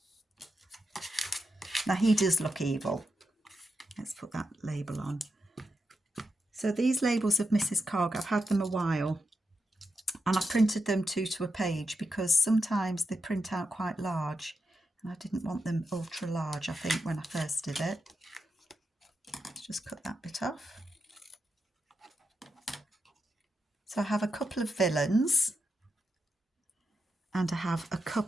Now he does look evil. Let's put that label on. So these labels of Mrs. Cogg, I've had them a while, And I printed them 2 to a page because sometimes they print out quite large and I didn't want them ultra large, I think, when I first did it. Let's just cut that bit off. So I have a couple of villains and I have a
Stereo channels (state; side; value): normal; both; correlation 0.87